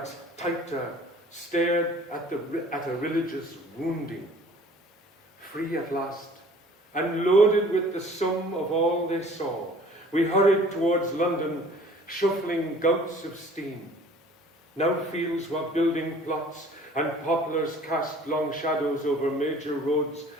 tighter, stared at a religious wounding. Free at last, and loaded with the sum of all they saw, we hurried towards London, shuffling gouts of steam. Now fields were building plots, and poplars cast long shadows over major roads,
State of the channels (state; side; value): normal; both; correlation 0.51